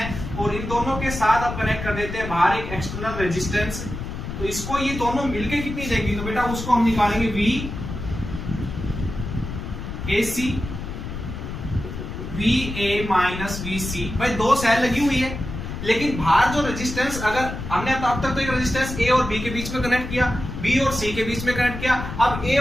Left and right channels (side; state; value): left; noise; rumble, 7 dB below the sound